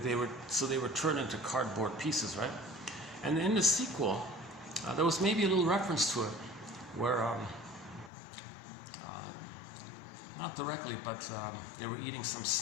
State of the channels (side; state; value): right; drops out; at 8.1 s